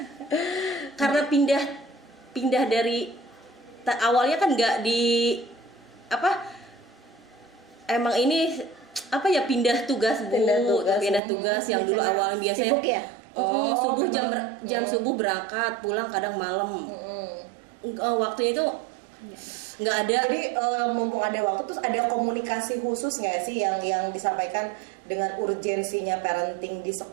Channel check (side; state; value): left; drops out; at 11.2 s